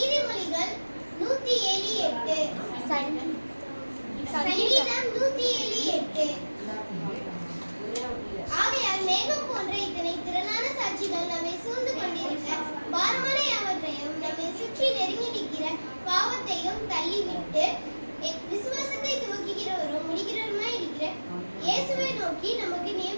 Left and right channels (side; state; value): both; inverted; correlation -1.00